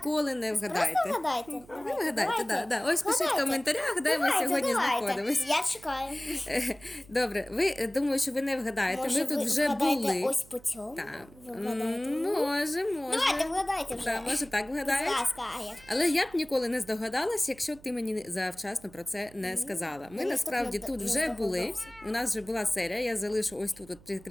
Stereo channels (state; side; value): noise; right; hum, 23 dB below the sound